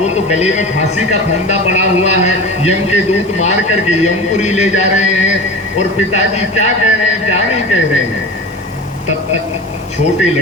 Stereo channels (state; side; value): normal; both; correlation 0.32